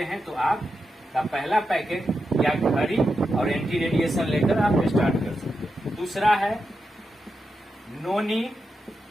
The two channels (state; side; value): normal; both; correlation 0.88